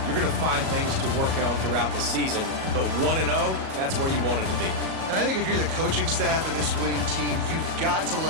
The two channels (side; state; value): left; late; 37 ms